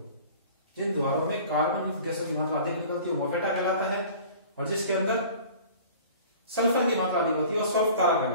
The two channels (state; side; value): inverted; both; correlation -0.45